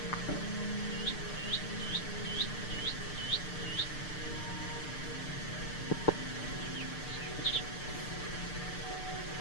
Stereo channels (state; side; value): late; right; 6.7 ms